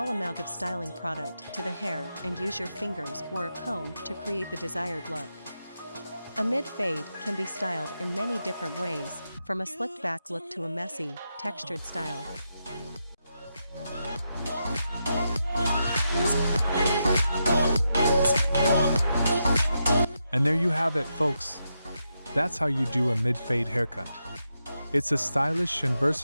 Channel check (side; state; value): both; inverted; correlation -0.85